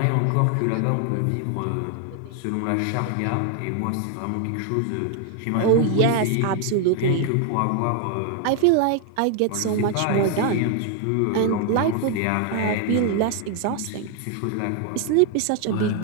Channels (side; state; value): both; different; correlation 0.00